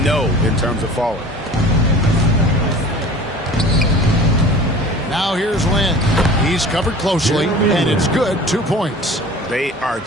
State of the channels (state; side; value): normal; both; correlation 0.43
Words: no in terms of falling. Now here's Lynn. He's covered closely, and it's good. 2 points. They are